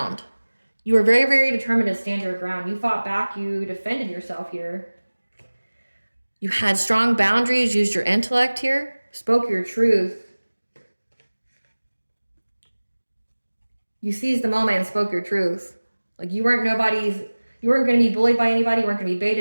You were very, very determined to stand your ground. You fought back. You defended yourself here. You had strong boundaries, used your intellect here, spoke your truth. You seized the moment and spoke your truth. Like you weren't going to be bullied by anybody. You weren't going to be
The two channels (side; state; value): both; inverted; correlation -1.00